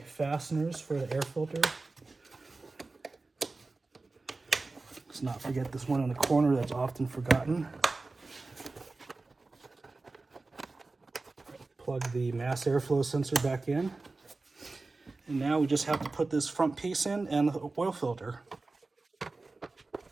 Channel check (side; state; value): left; quieter; 3.5 dB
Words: fasteners for the air filter. Let's not forget this one in the corner that's often forgotten. Plug the mass airflow sensor back in. And now we just have to put this front piece in and the oil filter.